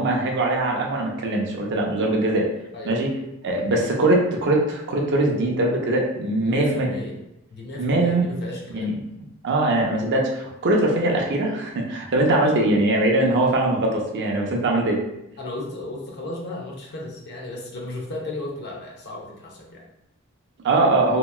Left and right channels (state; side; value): normal; both; correlation 0.18